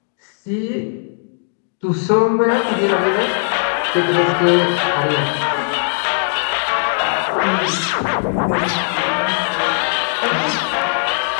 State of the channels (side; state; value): right; silent; digital silence